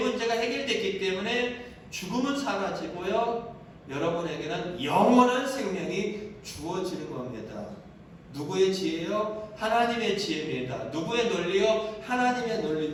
해결됐기 때문에 죽음은 사라지고요. 여러분에게는 영원한 생명이 주어지는 겁니다. 누구의 지혜요? 하나님의 지혜입니다. 누구의 논리요? 하나님의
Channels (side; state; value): both; identical; correlation 1.00